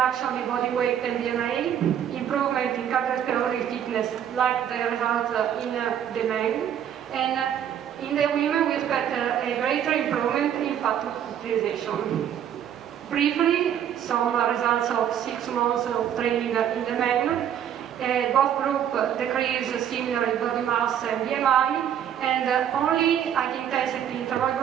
in body weight and BMI, improvement in cardiovascular fitness, like the results in the men, and in the women we expect a greater improvement in fat utilization. Briefly, some results of 6 months of training in the men. Both groups decrease similarly body mass and BMI, and only high-intensity interval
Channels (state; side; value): quieter; left; 9.6 dB